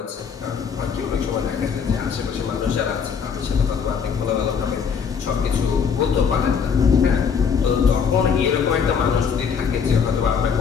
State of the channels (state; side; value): quieter; right; 6.5 dB